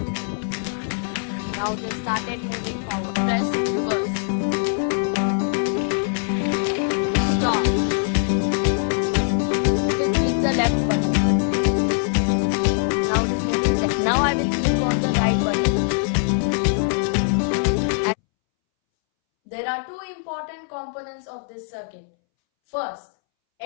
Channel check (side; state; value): right; silent; 64 dB below the other